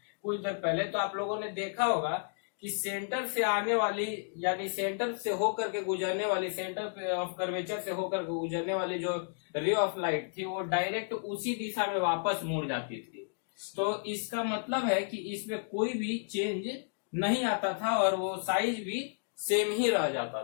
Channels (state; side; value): silent; right; digital silence